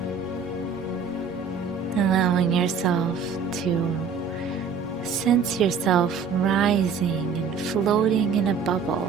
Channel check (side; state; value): left; quieter; 5.9 dB